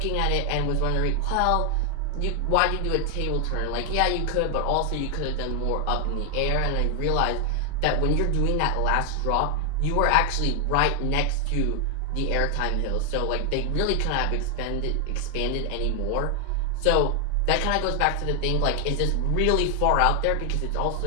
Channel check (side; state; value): both; different; correlation 0.00